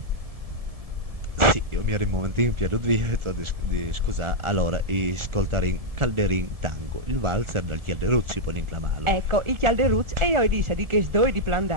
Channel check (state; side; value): late; left; 1.7 ms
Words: Sì, io mi ero un momentino piaciuto di scusare, allora, ascoltare Calderin Tango, il valzer dal Chialderuzzi poi inclamato. Ecco, il Chialderuz e io dice di che due di